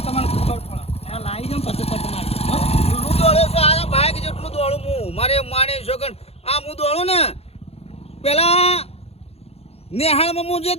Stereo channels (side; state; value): right; late; 0.29 ms